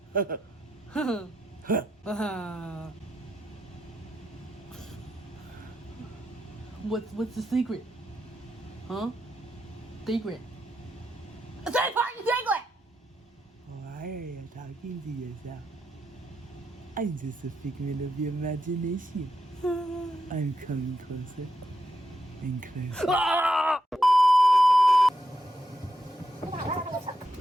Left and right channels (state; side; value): normal; both; correlation 0.83